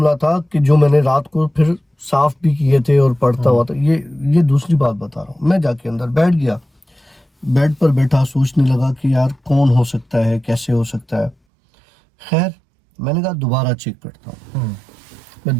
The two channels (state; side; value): drops out; left; at 11.4 s